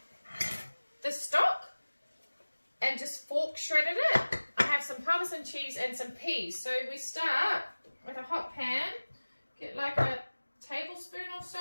the stock and just fork shredded it. I have some Parmesan cheese and some peas. So we start with a hot pan, get like a tablespoon or so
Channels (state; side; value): inverted; both; correlation -1.00